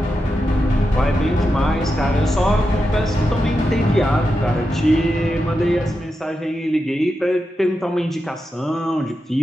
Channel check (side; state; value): both; normal; correlation 0.88